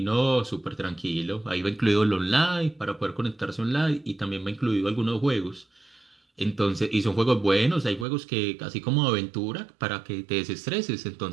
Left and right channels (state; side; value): drops out; left; at 8.1 s